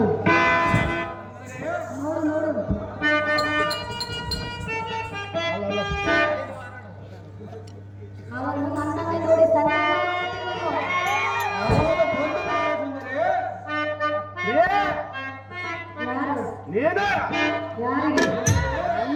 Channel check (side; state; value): both; identical; correlation 1.00